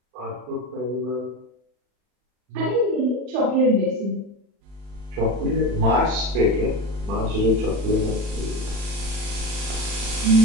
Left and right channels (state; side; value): late; left; 40 ms